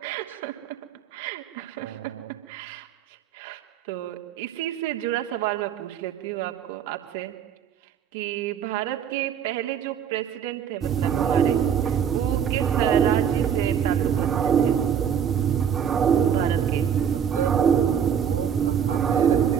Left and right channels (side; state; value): left; quieter; 8.2 dB